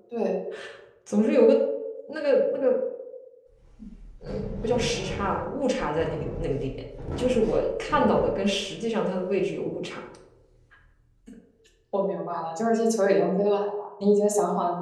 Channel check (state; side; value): identical; both; correlation 1.00